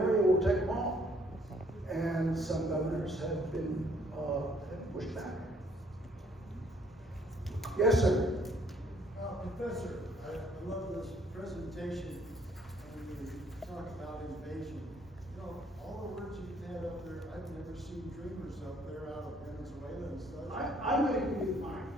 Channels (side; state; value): both; normal; correlation 0.64